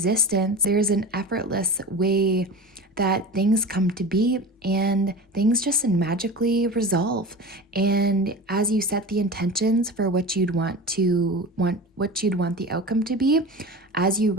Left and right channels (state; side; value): normal; both; correlation 0.31